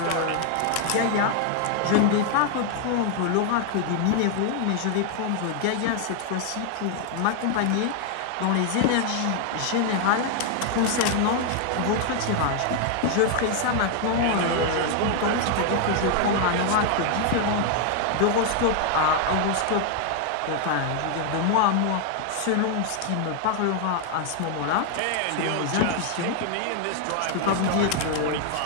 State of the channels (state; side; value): different; both; correlation 0.00